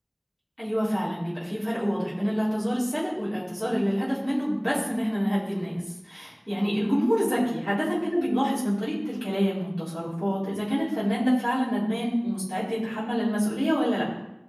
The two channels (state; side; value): identical; both; correlation 1.00